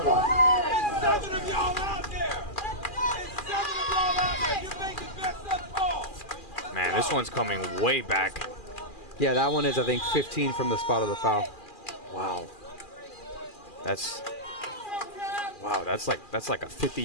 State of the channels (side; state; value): right; late; 2.4 ms